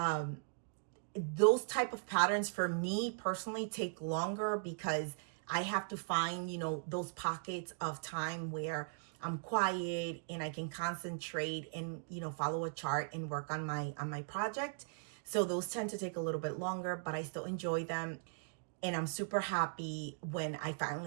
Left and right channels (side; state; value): left; silent; digital silence